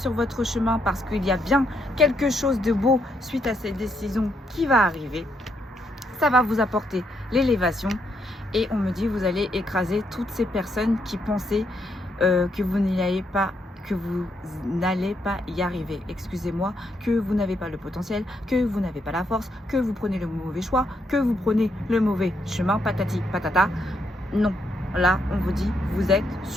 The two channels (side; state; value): both; normal; correlation 0.77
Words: votre chemin parce qu'il y a bien quelque chose de beau suite à cette décision qui va arriver. Ça va vous apporter l'élévation et on me dit vous allez écraser toutes ces personnes qui pensaient que vous n'allez pas y arriver, excusez-moi, que vous n'avez pas le potentiel, que vous n'avez pas la force, que vous prenez le mauvais choix, que vous prenez le mauvais chemin, patati patata. Non, là on vous dit vous êtes